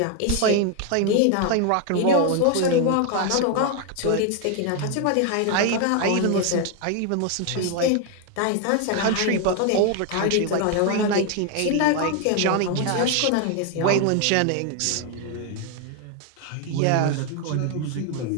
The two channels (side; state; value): both; different; correlation 0.01